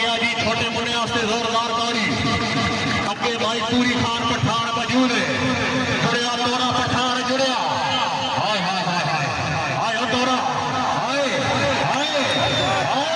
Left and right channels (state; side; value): identical; both; correlation 1.00